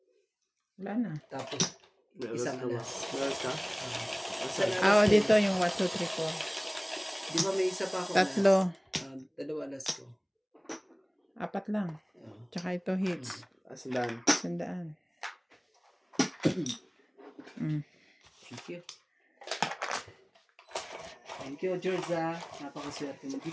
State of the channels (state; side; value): identical; both; correlation 1.00